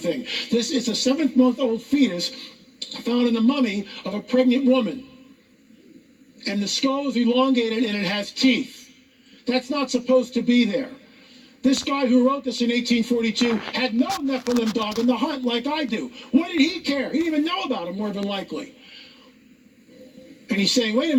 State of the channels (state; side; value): identical; both; correlation 1.00